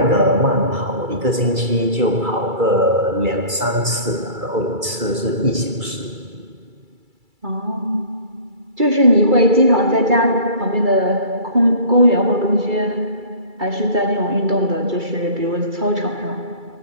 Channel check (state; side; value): late; left; 2.3 ms